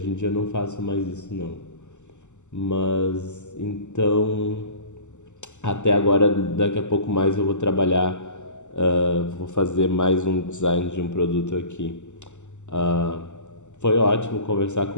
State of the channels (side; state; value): right; late; 0.84 ms